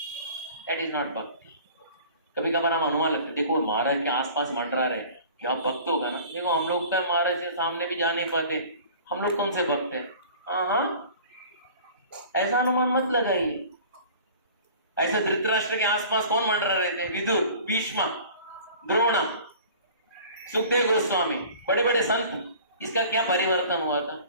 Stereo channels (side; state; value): both; inverted; correlation -0.45